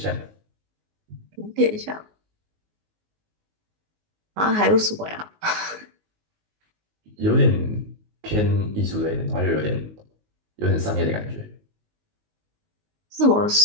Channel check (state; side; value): late; left; 19 ms